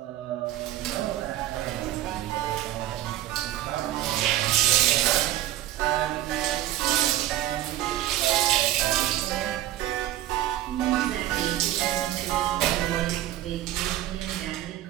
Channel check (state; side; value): quieter; left; 13.8 dB